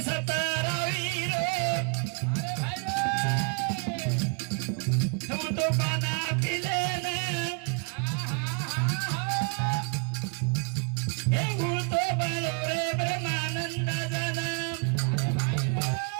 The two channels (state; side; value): quieter; left; 34.1 dB